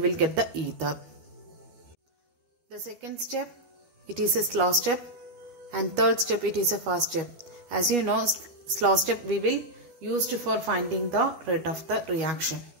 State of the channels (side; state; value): left; late; 13 ms